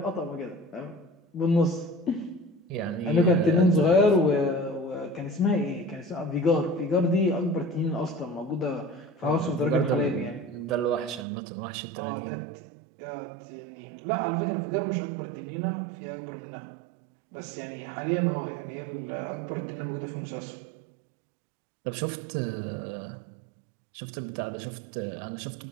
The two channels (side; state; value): left; drops out; at 11.2 s